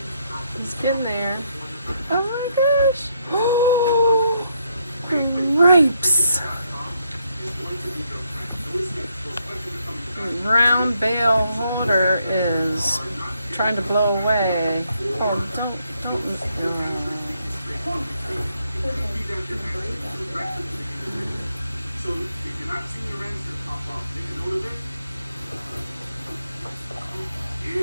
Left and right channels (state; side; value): inverted; both; correlation -0.75